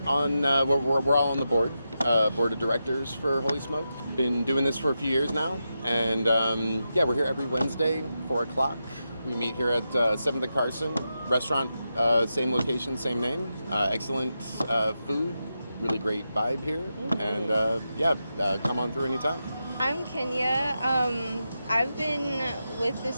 on, we're all on the board of directors for Holy Smoke. Been doing this for a few years now. And we're here every Wednesday, 4 o'clock. We meet here at 7th and Carson. Restaurant, same location, same name. Excellent food, really great vibe here. And come on through anytime. I'm Kenya. I've been with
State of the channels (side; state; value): both; inverted; correlation -0.88